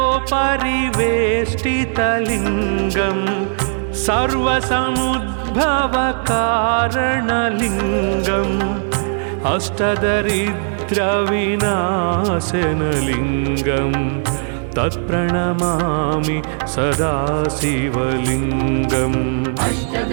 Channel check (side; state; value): left; silent; 58 dB below the other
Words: अष्टदलोपरिवेष्टितलिङ्गं सर्वसमुद्भवकारणलिङ्गम् अष्टदरिद्रविनाशनलिङ्गं तत्प्रणमामि सदा शिवलिङ्गम्